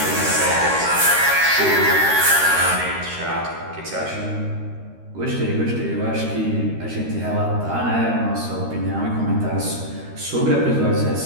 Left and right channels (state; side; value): late; left; 13 ms